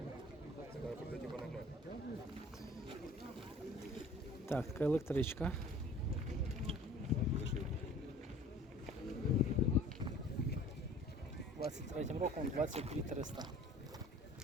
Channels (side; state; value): both; normal; correlation 0.48